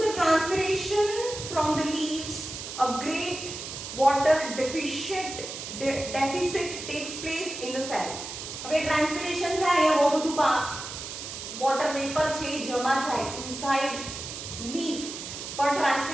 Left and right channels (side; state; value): right; noise; hiss, 8 dB below the sound